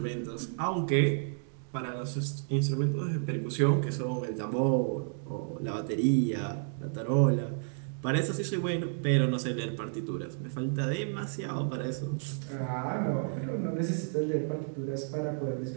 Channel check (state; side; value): silent; left; digital silence